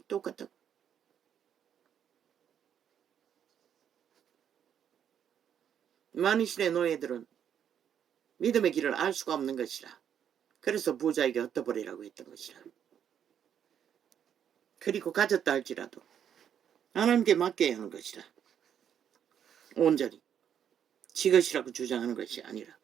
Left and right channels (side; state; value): left; quieter; 8.9 dB